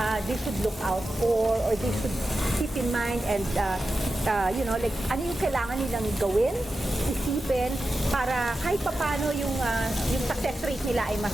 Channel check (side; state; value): both; normal; correlation 0.91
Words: they should look out for or they should keep in mind and like ano yung kailangan nilang gawin, isipin para kahit paano yung success rate nila ay mas